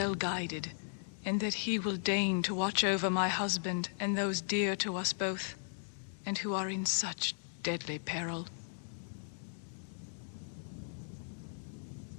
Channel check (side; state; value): right; silent; digital silence